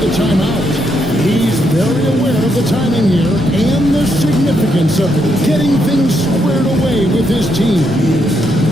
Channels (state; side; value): normal; both; correlation 0.78